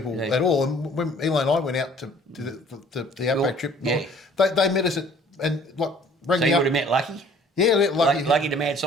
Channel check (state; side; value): normal; both; correlation 0.54